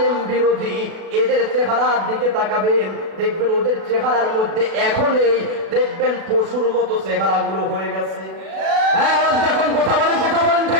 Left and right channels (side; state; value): left; late; 37 ms